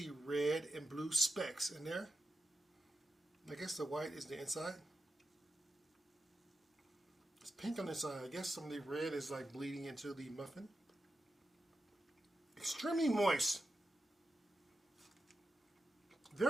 red and blue specks in there. I guess the white is the inside. It's pink on the inside. I guess some of the red is like bleeding into the muffin. Extremely moist.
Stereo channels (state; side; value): normal; both; correlation 0.90